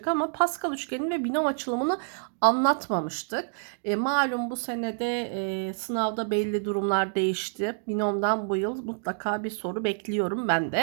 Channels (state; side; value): silent; left; digital silence